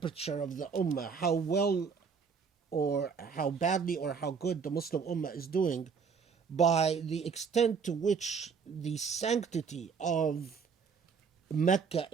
of the ummah, how well or how badly or how good the Muslim ummah is doing, by the extent to which the sanctity of Mecca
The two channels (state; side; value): quieter; left; 5.9 dB